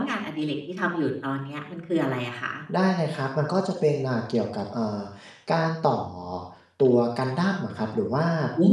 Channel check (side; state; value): both; identical; correlation 1.00